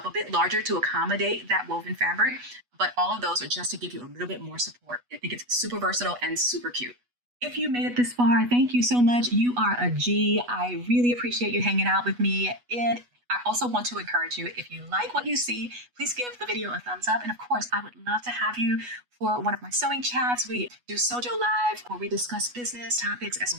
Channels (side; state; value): left; late; 8.2 ms